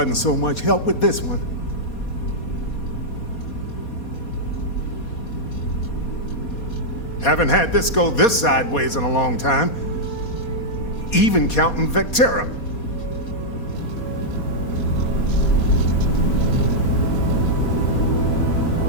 so much help with this one. Haven't had this go this sideways in a long time, even counting Vectera.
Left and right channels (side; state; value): right; late; 4.2 ms